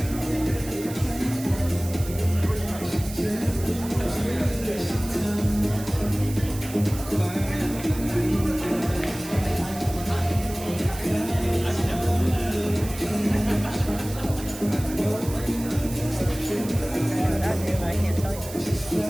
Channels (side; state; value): right; noise; hiss, 13 dB below the sound